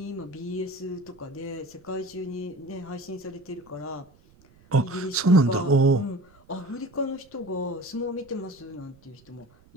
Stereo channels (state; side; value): noise; right; rumble, 28 dB below the sound